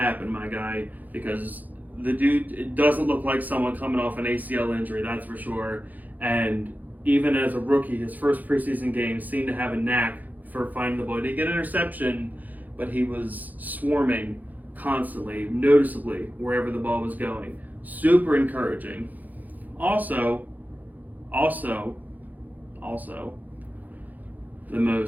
my guy, because the dude, it doesn't look like someone coming off an ACL injury, that's for sure. And even as a rookie, his first preseason game seemed to have a knack for finding the ball. He didn't get an interception, but he was swarming constantly, noticeably, wherever the ball was going. Super encouraging. Also, the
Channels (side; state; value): left; late; 0.082 ms